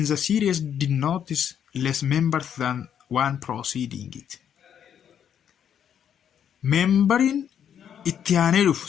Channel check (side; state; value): right; quieter; 8.8 dB